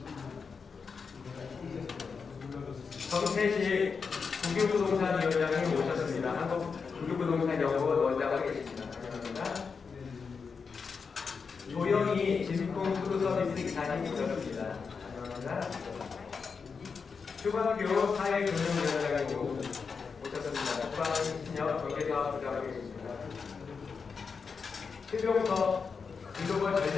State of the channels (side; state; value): right; quieter; 5.4 dB